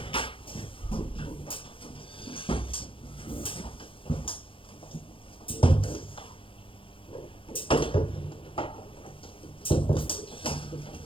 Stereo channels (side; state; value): right; late; 0.25 ms